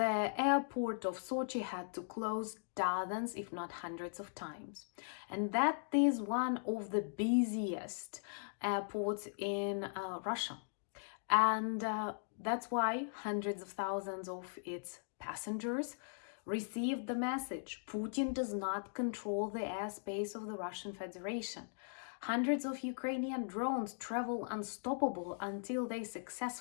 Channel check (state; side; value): silent; right; digital silence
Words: airport of Sochi had to close dozens, if not hundreds of times. And that is one of the busiest airports in Russia. And that's why hundreds of thousands of its passengers received the message: Putin does not control the airspace of the Russian Federation. Hundreds of Ukrainian drones travel unstoppable until they